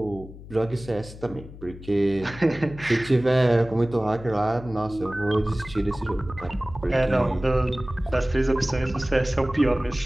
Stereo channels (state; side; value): noise; left; hum, 16 dB below the sound